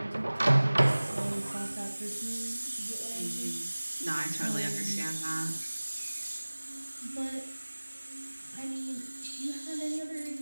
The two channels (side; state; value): both; inverted; correlation -1.00